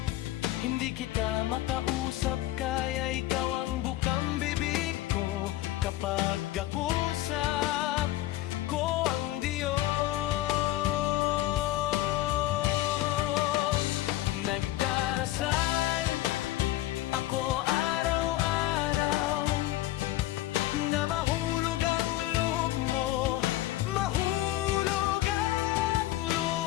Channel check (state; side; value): quieter; right; 15.4 dB